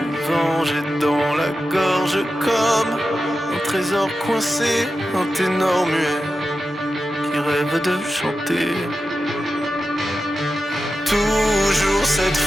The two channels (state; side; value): normal; both; correlation 0.92